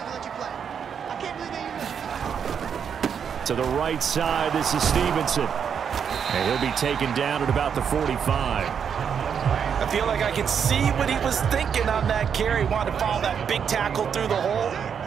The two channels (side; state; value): left; quieter; 7.4 dB